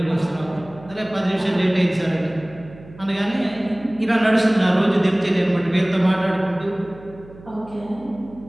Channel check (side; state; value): right; noise; hum, 20 dB below the sound